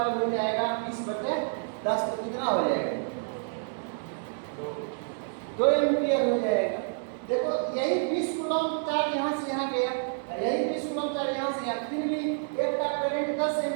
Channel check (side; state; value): left; silent; 59 dB below the other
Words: हो जाएगा 20/10, तो कितना हो जाएगा? 2 एम्पियर हो जाएगा। देखो यही 20 कूलम चार्ज यहाँ से यहाँ गया, यही 20 कूलम चार्ज यहाँ से यहाँ, फिर भी एक का करंट 10